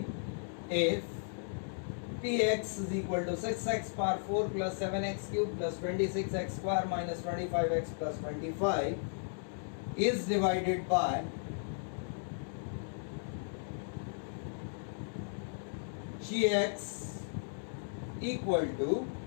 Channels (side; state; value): right; silent; digital silence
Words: If px is equal to 6x power 4 plus 7x cube plus 26x square minus 25x plus 25 is divided by gx equal to